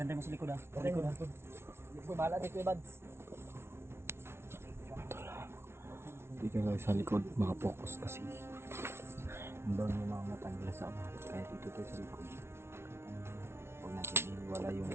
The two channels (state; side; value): late; left; 0.12 ms